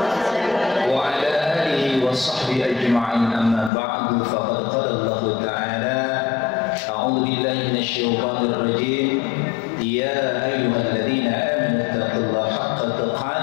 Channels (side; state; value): right; drops out; at 3.7 s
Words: ala alihi wa sahbihi ajma'in, amma ba'du. Faqad qala Allah ta'ala a'udzu billahi minasy syaithanir rajim, ya ayyuhalladzina amanu taqullaha haqqa